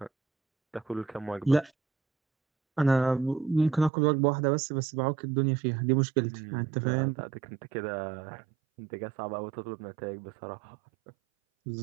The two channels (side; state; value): left; drops out; at 3.9 s